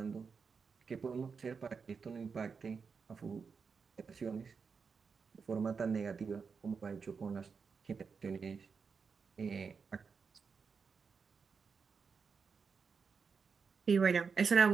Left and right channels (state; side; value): quieter; left; 5.5 dB